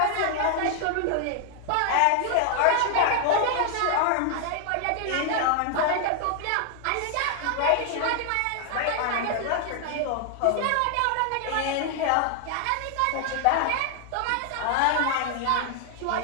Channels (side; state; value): both; different; correlation 0.00